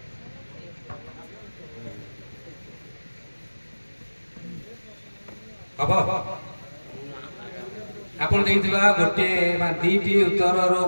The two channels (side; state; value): both; inverted; correlation -1.00